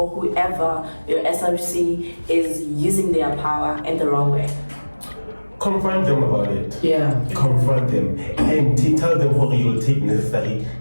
whoever, your SRC, is using their power in the wrong way? Confront them about it. Yeah. Confront them and tell them how you'll take necessary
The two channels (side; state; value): both; inverted; correlation -1.00